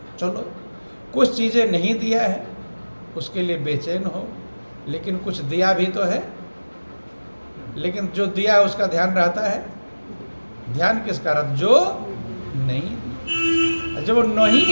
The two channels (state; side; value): inverted; both; correlation -1.00